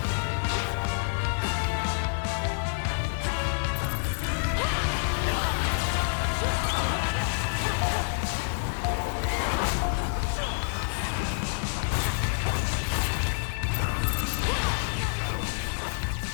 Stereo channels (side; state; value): right; silent; digital silence